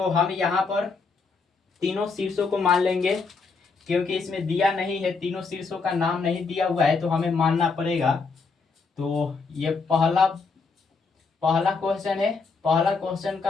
हम यहाँ पर तीनों शीर्षों को मान लेंगे क्योंकि इसमें दिया नहीं है, तीनों शीर्षों का नाम नहीं दिया हुआ है तो हमें मानना पड़ेगा। तो ये पहला पहला क्वेश्चन है, पहला क्वेश्चन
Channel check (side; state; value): right; quieter; 4.6 dB